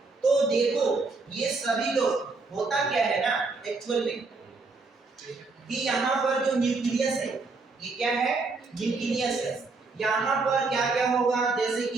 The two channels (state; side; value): quieter; left; 3.9 dB